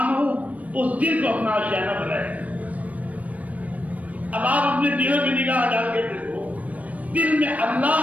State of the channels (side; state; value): left; late; 0.070 ms